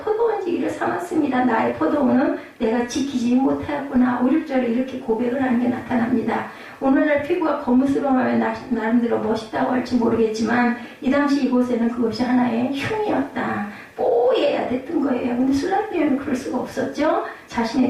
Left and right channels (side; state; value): both; identical; correlation 1.00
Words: 삼았습니다. 나의 포도원은 내가 지키지 못하였구나. 5, 6절에 이렇게 고백을 하는 게 나타납니다. 오늘날 피부가 거무스름하면 나름대로 멋있다고 할지 모르겠지만 이 당시 이곳에는 그것이 하나의 흉이었다. 뽀얘야 됐던 거예요. 근데 술람 여인은 그럴 수가 없었죠.